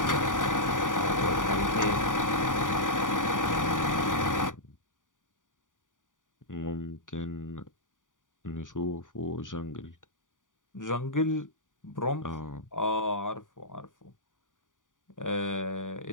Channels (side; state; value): right; late; 0.88 ms